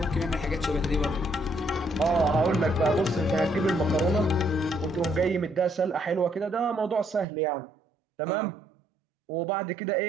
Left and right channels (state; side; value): drops out; left; at 7.2 s